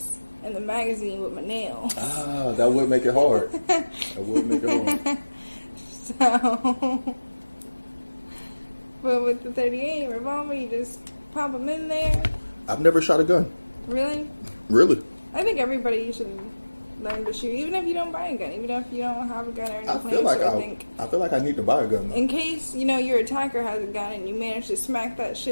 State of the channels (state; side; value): inverted; both; correlation -1.00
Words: in the magazine with my nails. Ah, that would make it hard. That would make it hard. So, but with the 38 revolver, you just pop them in there. I've never shot a gun. Really? Really? I think everybody should learn to shoot, even if you don't buy a gun, even if you don't have a gun or I anything. feel like I need to buy a gun, though. In case, your attacker has a gun and you manage to smack that